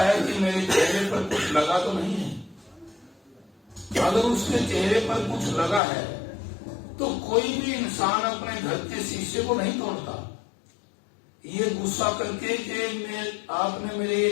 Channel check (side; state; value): right; drops out; at 5.8 s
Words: कि मेरे चेहरे पर कुछ लगा तो नहीं है। अगर उसके चेहरे पर कुछ लगा है तो कोई भी इंसान अपने घर के शीशे को नहीं तोड़ता, ये गुस्सा करके कि आपने मेरे ये